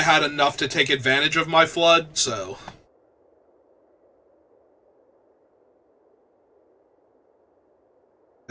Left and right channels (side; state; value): both; identical; correlation 1.00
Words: enough to take advantage of my flood, so...